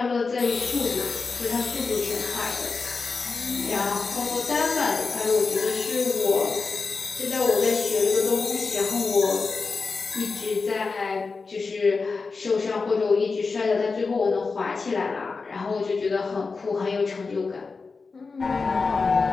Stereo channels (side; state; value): right; quieter; 4.4 dB